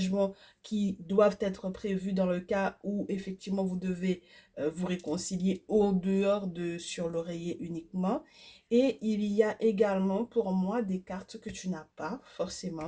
qui doivent être prévus dans le cas où effectivement vous devez vous réconcilier au dehors de sur l'oreiller uniquement. Et il y a également pour moi des cartes que tu n'as pas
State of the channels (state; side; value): identical; both; correlation 1.00